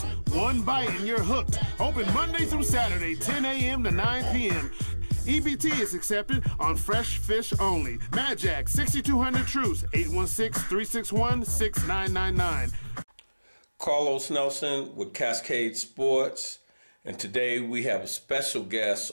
One bite and you're hooked. Open Monday through Saturday, 10 a.m. to 9 p.m. EBT is accepted on fresh fish only. Mad Jack, 6200 Truce, 816-361-6999. Carlos Nelson with Cascade Sports, and today we have a special guest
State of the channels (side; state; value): both; inverted; correlation -1.00